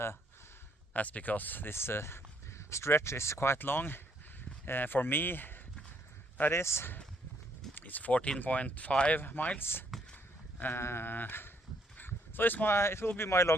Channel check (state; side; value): normal; both; correlation 0.69